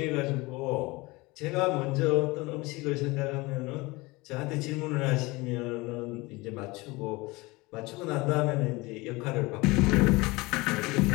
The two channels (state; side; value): quieter; right; 23.1 dB